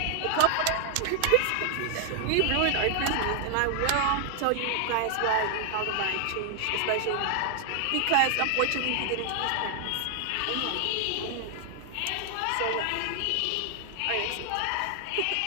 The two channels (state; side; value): different; both; correlation 0.00